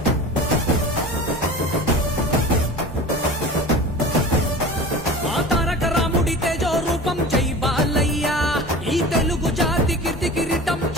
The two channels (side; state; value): both; normal; correlation 0.36